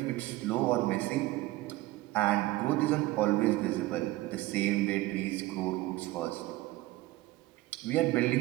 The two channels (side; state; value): left; quieter; 18.2 dB